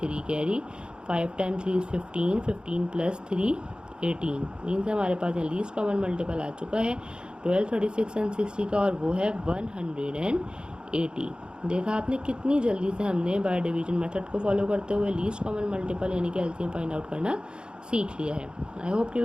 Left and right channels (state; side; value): late; left; 0.050 ms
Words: 3 carry. 5 times 3 is 15, 15 plus 3 18 means हमारे पास यहाँ लीस्ट कॉमन मल्टीपल आ चुका है 12, 36 एंड 60 का और वो है 180। देखा आपने कितनी जल्दी से हमने बाय डिवीजन मेथड को फॉलो करते हुए लीस्ट कॉमन मल्टीपल यानी कि एलसीएम फाइंड आउट करना सीख लिया है। आई होप कि